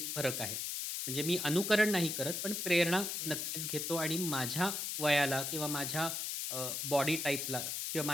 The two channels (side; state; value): left; noise; hiss, 2 dB below the sound